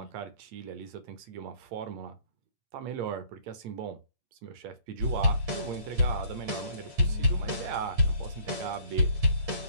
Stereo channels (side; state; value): left; late; 8.6 ms